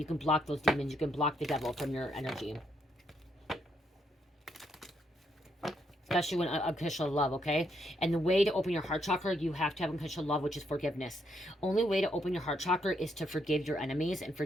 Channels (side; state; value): both; normal; correlation 0.76